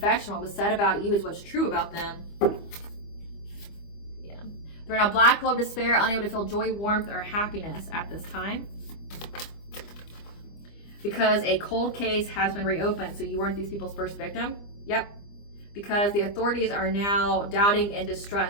What was said about you is what's true about them. Yeah, they're in a black hole of despair, unable to feel joy, warmth, or happiness at this time, because a cold case has been reopened. So you weren't these people's first victim. Yep. Because the authorities are now doubting and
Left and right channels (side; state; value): right; late; 25 ms